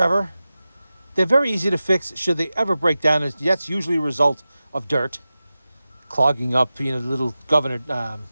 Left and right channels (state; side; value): inverted; both; correlation -0.94